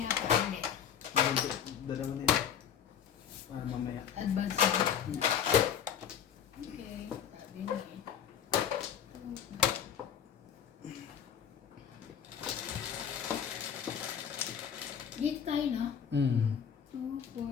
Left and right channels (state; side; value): quieter; right; 8.4 dB